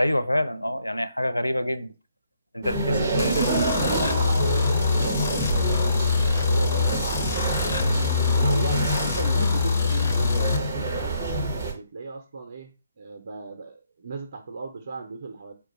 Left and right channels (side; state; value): both; inverted; correlation -0.71